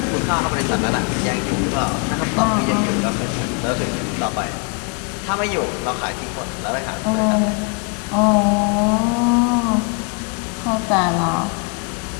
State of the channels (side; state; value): right; quieter; 35.3 dB